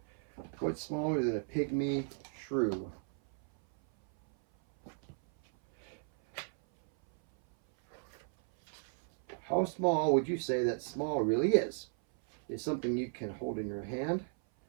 what's smaller than a pygmy shrew? How small would you say that small really is? Is something you can hold in your hand,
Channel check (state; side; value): silent; left; 54 dB below the other